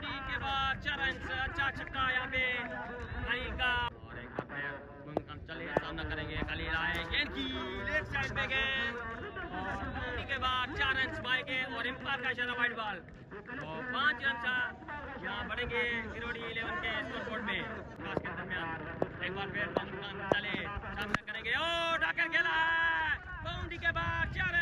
के बाद 4 रन, अच्छा छक्का यहाँ पे खलील का। और एक बार फिर मोहम्मद खान चले सामना करेंगे खलील आए गेंद की लेग साइड पे गेंद और बाउंड्री के बाद 4 रन पाएंगे और एम्पायर का इशारा वाइड बॉल और 5 रन यहाँ बढ़ेंगे किरोड़ी 11 के स्कोर बोर्ड में। खास के दरमियान एक बार फिर मोहम्मद खान चले सामना करेंगे और डाकर खेला है बाउंड्री के बाद 4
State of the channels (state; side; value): identical; both; correlation 1.00